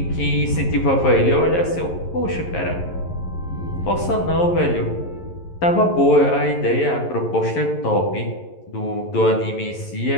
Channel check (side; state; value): right; late; 11 ms